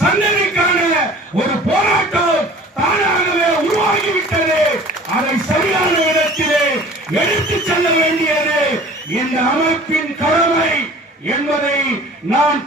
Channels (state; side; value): normal; both; correlation 0.46